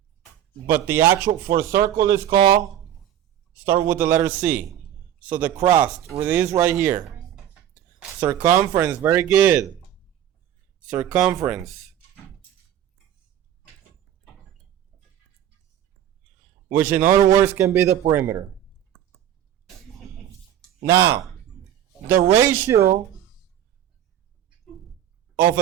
But the actual for circle is called, start with the letter C. So the crust, it is right here. Circumference, very good. Circumference. Which in other words can be the perimeter. Now, the ratio of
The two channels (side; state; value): left; quieter; 11.0 dB